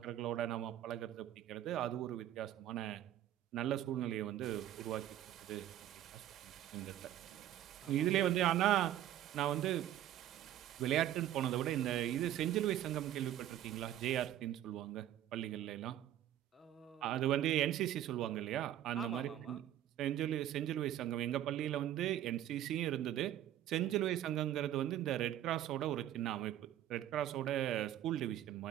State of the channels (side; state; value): left; quieter; 12.2 dB